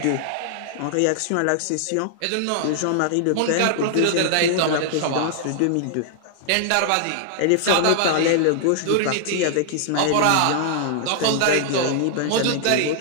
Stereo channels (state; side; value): different; both; correlation -0.01